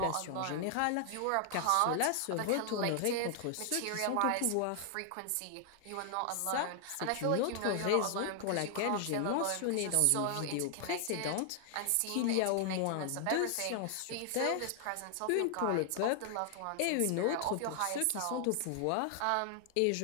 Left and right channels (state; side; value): different; both; correlation 0.00